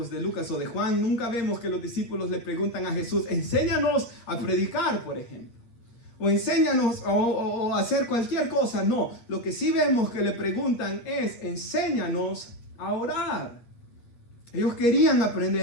de Lucas o de Juan, nunca vemos que los discípulos le preguntan a Jesús, enséñanos a predicar, por ejemplo. O enséñanos o hacer cualquier cosa. No, lo que sí vemos que le preguntan es, enséñanos a orar. Ellos querían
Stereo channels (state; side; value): late; right; 8.6 ms